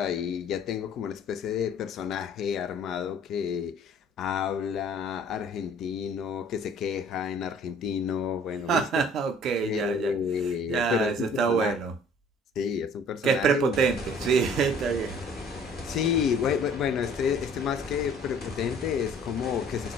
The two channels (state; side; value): normal; both; correlation 0.53